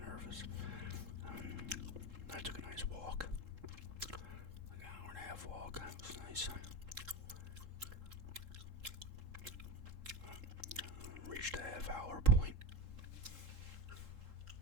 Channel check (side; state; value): left; late; 3.7 ms